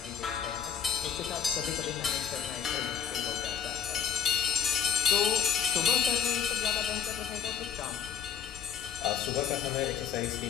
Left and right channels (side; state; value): right; quieter; 8.0 dB